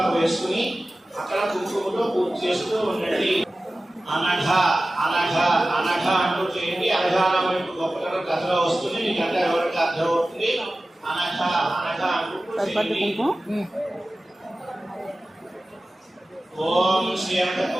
వేసుకుని అక్కడ కుంకుమతో పూజ చేస్తూ ఉండండి. అనఘ అనఘ అనఘ అంటూ చేయండి. అనఘానం గొప్పతనం కథలో వస్తుంది. మీకు అంటే ఎవరికి అర్థం అవుతుంది. అనఘ అనఘ అంటూ చేయండి. ఓం శ్రీ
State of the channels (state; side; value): normal; both; correlation 0.96